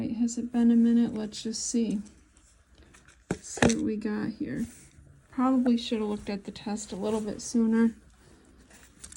has it been a minute? Let's just see. Let's see what we got here. Probably should have looked at the test a little bit sooner.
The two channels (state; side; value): identical; both; correlation 1.00